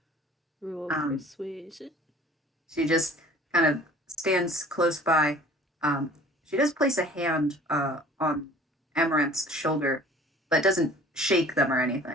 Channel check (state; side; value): normal; both; correlation 0.49